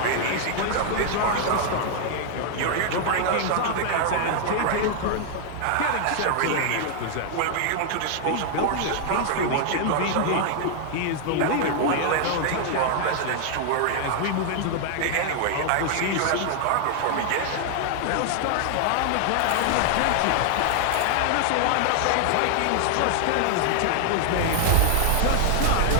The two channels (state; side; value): different; both; correlation 0.00